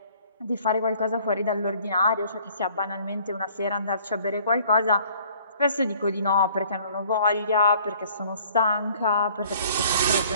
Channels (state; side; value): inverted; both; correlation -0.56